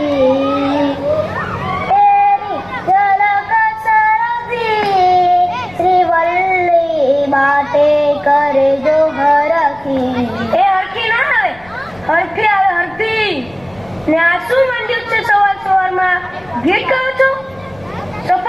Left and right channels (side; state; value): left; noise; rumble, 25 dB below the sound